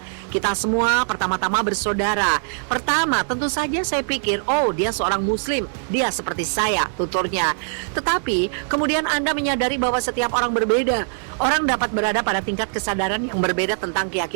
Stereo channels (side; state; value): left; silent; digital silence